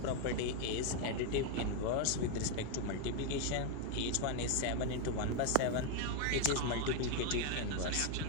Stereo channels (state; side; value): different; both; correlation 0.01